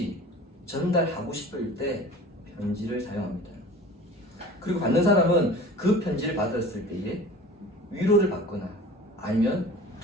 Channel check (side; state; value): both; normal; correlation 0.41